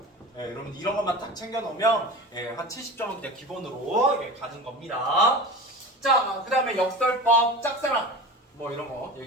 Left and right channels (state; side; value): normal; both; correlation 0.33